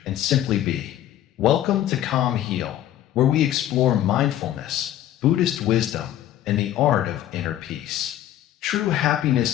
and simply be. Welcome to Calm Heal, where we explore mindfulness, Buddhist wisdom, and the art of inner peace. True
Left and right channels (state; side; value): quieter; right; 12.4 dB